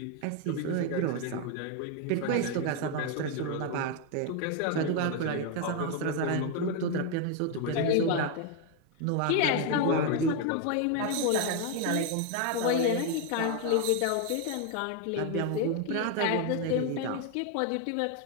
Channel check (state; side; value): different; both; correlation 0.01